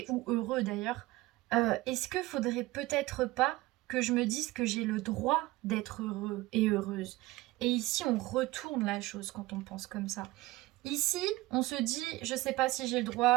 ou heureux d'ailleurs, est-ce que faudrait peut-être pas que je me dise que j'ai le droit d'être heureux et heureuse? Et ici, on retourne la chose quand on pense comme ça. Ici, on se dit, je sais pas si j'ai le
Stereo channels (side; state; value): left; quieter; 19.1 dB